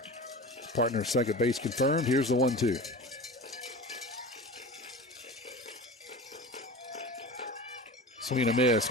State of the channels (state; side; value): normal; both; correlation 0.33